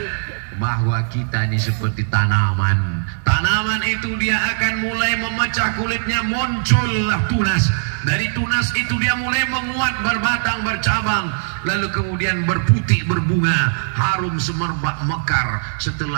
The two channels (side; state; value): left; silent; 66 dB below the other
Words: Bahwa kita ini seperti tanaman. Tanaman itu dia akan mulai memecah kulitnya, muncullah tunas. Dari tunas itu dia mulai menguat, berbatang, bercabang, lalu kemudian berputih, berbunga, harum semerbak, mekar.